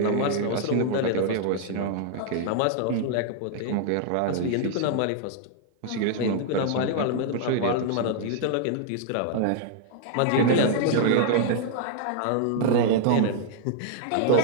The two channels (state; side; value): different; both; correlation -0.01